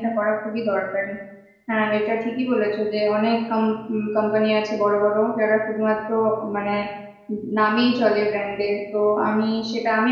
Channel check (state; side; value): identical; both; correlation 1.00